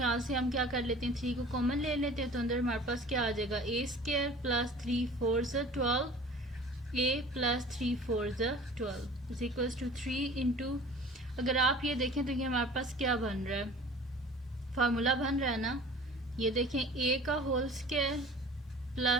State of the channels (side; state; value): both; normal; correlation 0.45